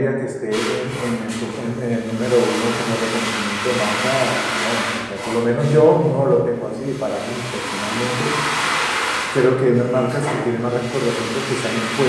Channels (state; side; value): identical; both; correlation 1.00